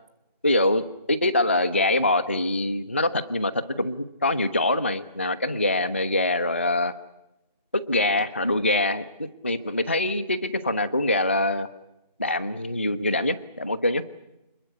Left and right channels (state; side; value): inverted; both; correlation -0.54